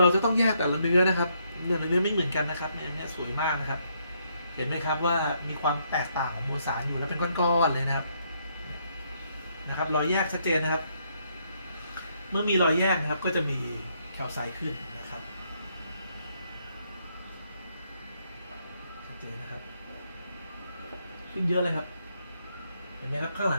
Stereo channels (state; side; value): inverted; both; correlation -0.73